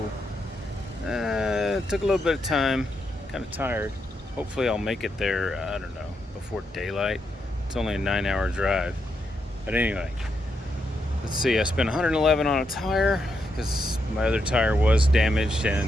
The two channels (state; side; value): normal; both; correlation 0.82